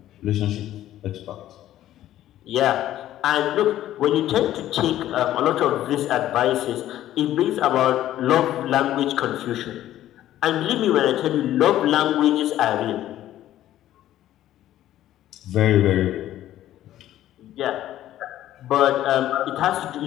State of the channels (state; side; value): quieter; right; 13.1 dB